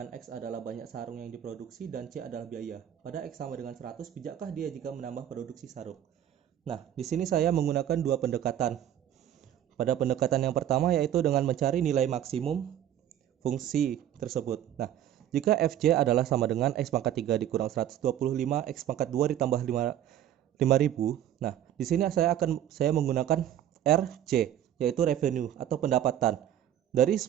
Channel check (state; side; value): quieter; left; 10.9 dB